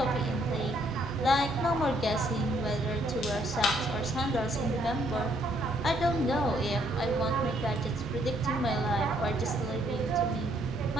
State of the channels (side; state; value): both; normal; correlation 0.69